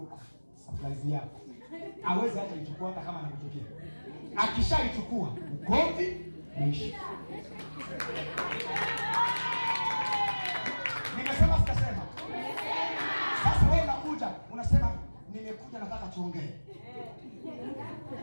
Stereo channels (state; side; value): inverted; both; correlation -1.00